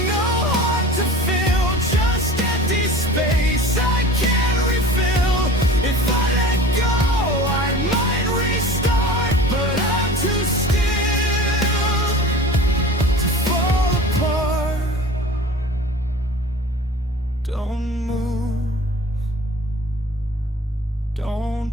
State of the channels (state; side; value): normal; both; correlation 0.40